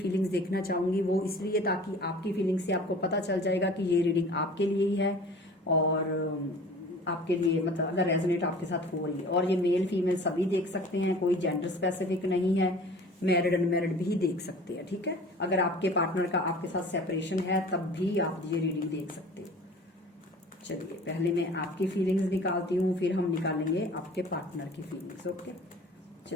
देखना चाहूंगी। वो इसलिए ताकि आपकी फीलिंग्स से आपको पता चल जाएगा कि ये रीडिंग आपके लिए ही है, और आपके लिए मतलब अगर रेजोनेट आपके साथ हो रही है। और ये मेल फीमेल सभी देख सकते हैं, कोई जेंडर स्पेसिफिक नहीं है, मैरिड अनमैरिड भी देख सकते हैं। ठीक है, अगर आपके पार्टनर का आपके साथ सेपरेशन है तब भी आप ये रीडिंग देख सकते हो। चलिए, पहले मैं आपकी फीलिंग्स निकालती हूँ, फिर हम निकालेंगे आपके पार्टनर की फीलिंग्स। ओके,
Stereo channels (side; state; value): both; normal; correlation 0.44